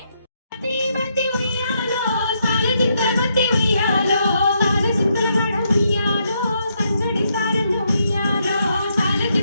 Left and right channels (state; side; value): inverted; both; correlation -0.77